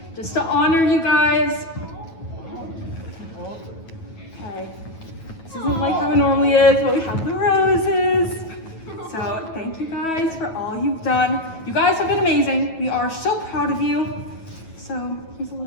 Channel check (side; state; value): right; late; 9.3 ms